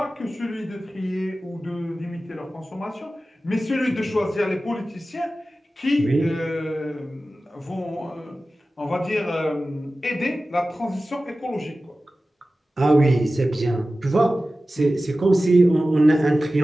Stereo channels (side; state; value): both; normal; correlation 0.95